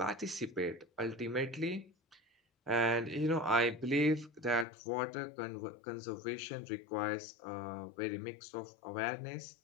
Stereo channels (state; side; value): drops out; right; at 4.7 s